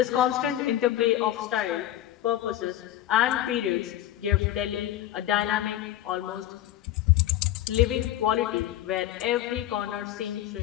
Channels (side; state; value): right; quieter; 13.1 dB